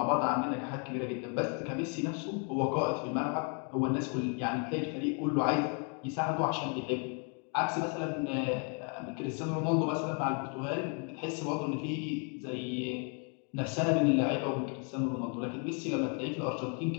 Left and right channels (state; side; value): quieter; right; 39.3 dB